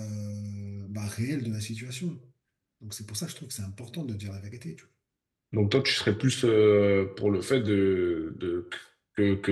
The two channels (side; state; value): both; identical; correlation 1.00